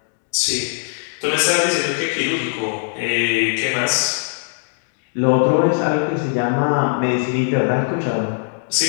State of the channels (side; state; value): right; silent; digital silence